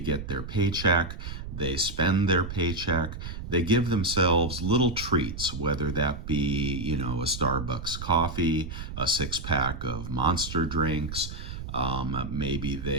their paycheck, they spend their paycheck, they give themselves little treats, whether that be, a Starbucks coffee, a six-pack of Monster drinks. Maybe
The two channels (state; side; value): noise; right; rumble, 8 dB below the sound